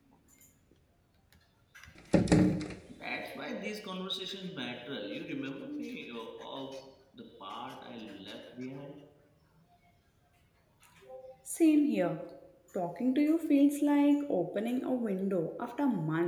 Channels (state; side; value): identical; both; correlation 1.00